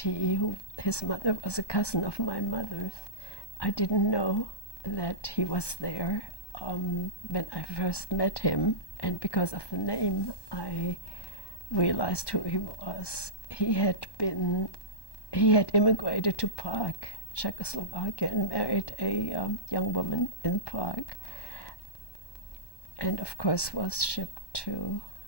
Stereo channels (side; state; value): right; late; 1.1 ms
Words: his mother was a cousin of my mother's. I didn't know that he was there when I first met him, and because of the name, I realized who he was. He had immigrated to Prague, Czechoslovakia, and married a young woman in Prague, and of course was shipped to